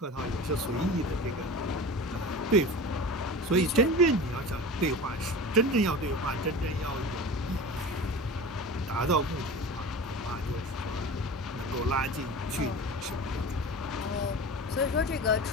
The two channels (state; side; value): normal; both; correlation 0.34